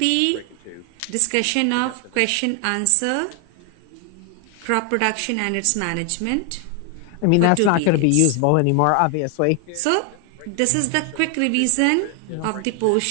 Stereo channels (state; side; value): different; both; correlation 0.00